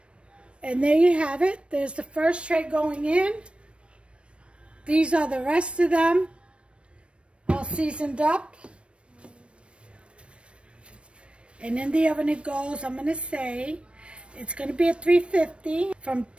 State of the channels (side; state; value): left; late; 0.059 ms